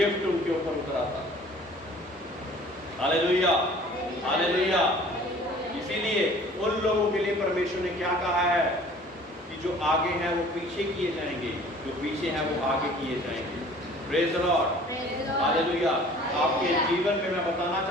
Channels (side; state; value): both; normal; correlation 0.50